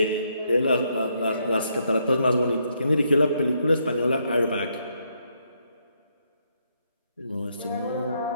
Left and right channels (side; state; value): both; inverted; correlation -0.76